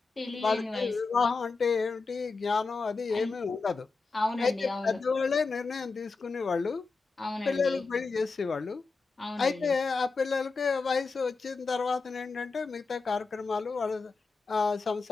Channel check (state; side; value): quieter; right; 4.3 dB